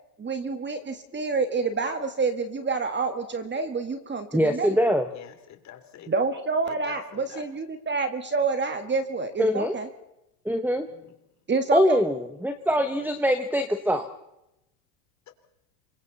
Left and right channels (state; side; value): normal; both; correlation 0.45